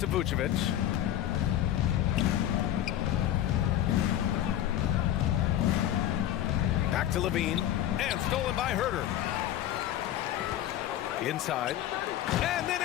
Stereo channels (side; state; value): right; quieter; 12.1 dB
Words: Vucevic. Back to Levine. And stolen by Herter. Inside. And then